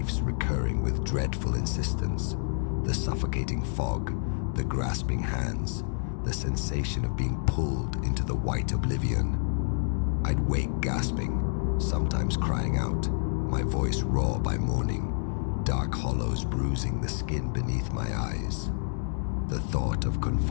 recurring with dreadful insistence. The suffocating fog, the grasping hands, the sensation of being pulled into the white oblivion. I'd wake gasping, sometimes crying out, my voice raw by morning, dark hollows bruising the skin beneath my eyes. The thought of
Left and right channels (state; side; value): silent; right; digital silence